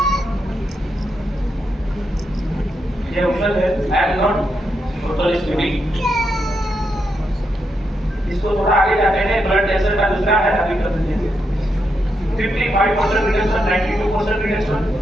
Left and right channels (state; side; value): normal; both; correlation 0.82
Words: ये ऑप्शन है, I am not totally studding. इसको थोड़ा आगे जाते हैं, ब्लड कैंसर का दूसरा है, अभी कर देंगे। 55% रिडक्शन, 92% रिडक्शन।